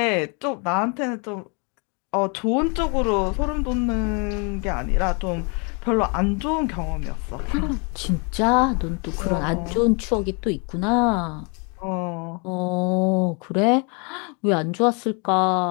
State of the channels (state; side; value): quieter; right; 34.6 dB